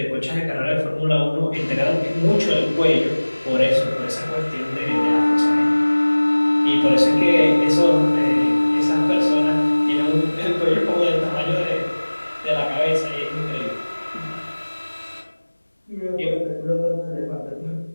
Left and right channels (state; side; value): inverted; both; correlation -1.00